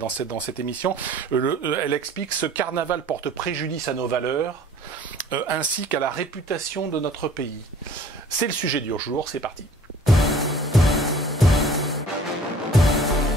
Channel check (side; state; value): both; normal; correlation 0.50